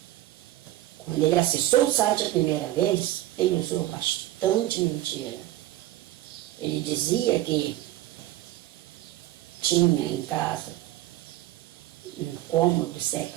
Quando ele acessou o site a primeira vez, ele usou bastante mentira. Ele dizia que tinha em casa um cômodo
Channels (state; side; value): quieter; left; 15.1 dB